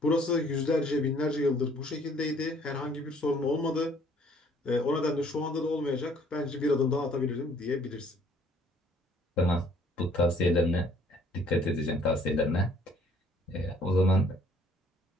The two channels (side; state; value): both; normal; correlation 0.60